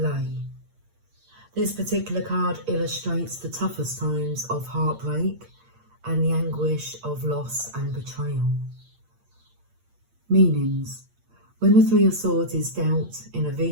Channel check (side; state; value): left; late; 8.7 ms